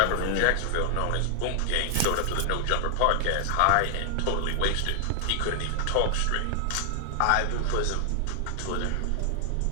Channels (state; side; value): different; both; correlation 0.00